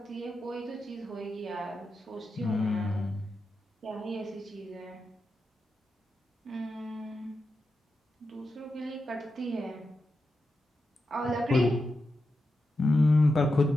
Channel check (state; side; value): normal; both; correlation 0.89